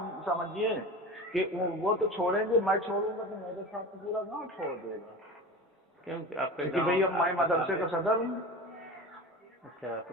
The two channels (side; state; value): both; normal; correlation 0.31